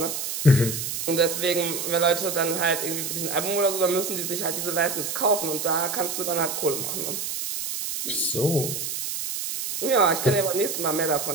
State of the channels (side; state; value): right; noise; hiss, 4 dB below the sound